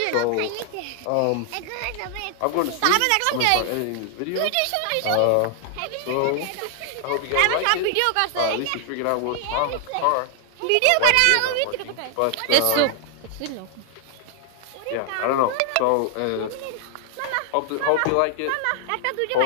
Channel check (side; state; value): both; different; correlation 0.00